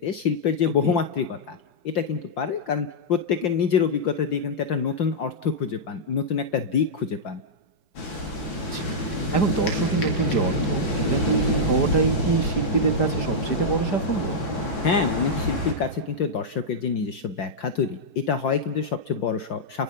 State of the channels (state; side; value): late; right; 4.7 ms